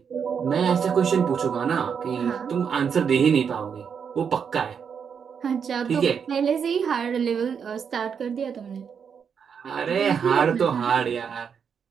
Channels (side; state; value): left; quieter; 6.9 dB